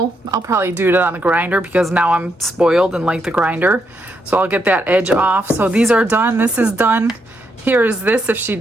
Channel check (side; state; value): both; normal; correlation 0.79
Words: I'll probably do it on the grinder because now I'm spoiled and like the grinder. So I'll get that edge off. So these are done, this is done. Here is this if she